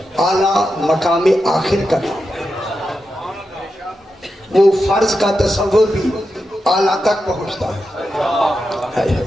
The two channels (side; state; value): both; normal; correlation 0.88